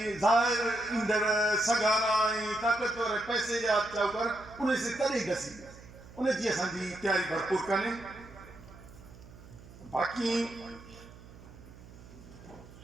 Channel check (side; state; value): right; noise; hum, 19 dB below the sound